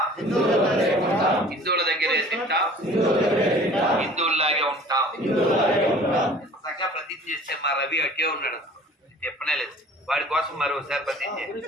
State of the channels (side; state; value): both; normal; correlation 0.47